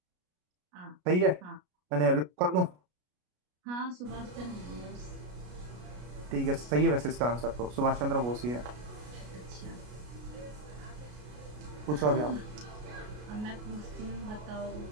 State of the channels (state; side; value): late; left; 33 ms